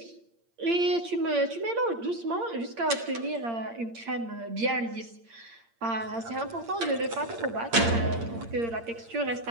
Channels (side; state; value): left; late; 8.7 ms